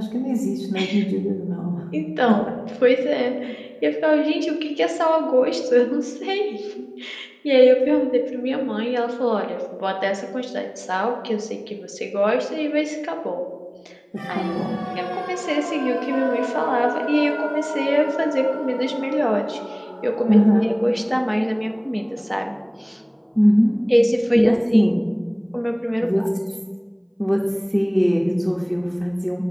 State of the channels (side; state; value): both; identical; correlation 1.00